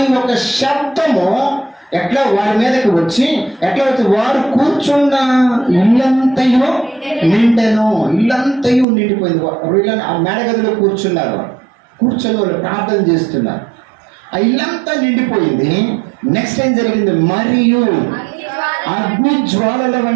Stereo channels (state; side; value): drops out; left; at 8.8 s